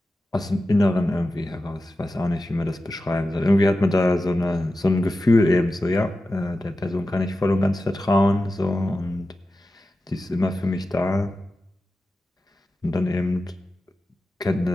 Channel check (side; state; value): both; normal; correlation 0.93